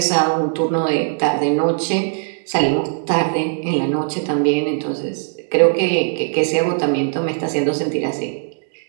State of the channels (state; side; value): silent; left; digital silence